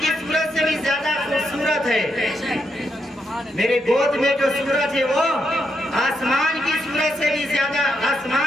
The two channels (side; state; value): both; normal; correlation 0.80